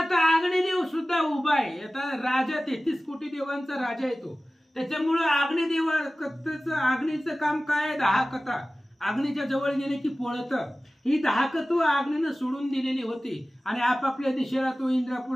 अग्निदेव सुद्धा उभा आहे. आता राजा 33 कोटी देवांचा राजा येतो, त्याच्यामुळे अग्निदेवाचं अग्नीचं काम काय? दाहकता. अग्नीच्या जवळ गेले की पळत. ही दाहकत्व अग्नीनं सोडून दिलेली होती आणि आपापल्या दिशेला तो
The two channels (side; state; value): both; normal; correlation 0.97